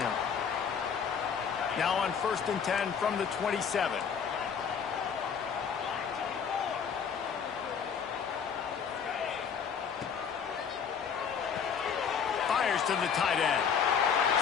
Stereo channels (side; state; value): right; quieter; 6.9 dB